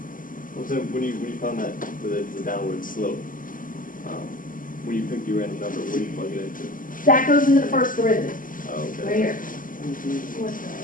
Well, so when you found that the downward slope, when you pick your random number, what do you plug it into? That goes into the first derivative, Oh, okay. right here.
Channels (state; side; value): late; right; 0.39 ms